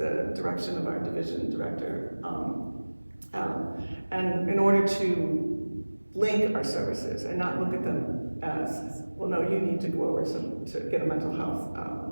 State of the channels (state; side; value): inverted; both; correlation -1.00